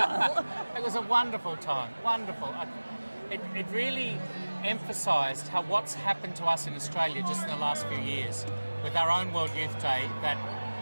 It was a wonderful time, wonderful. It really emphasised how what's happened to us in Australia just in the last few years with our own World Youth Day that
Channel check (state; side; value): inverted; both; correlation -1.00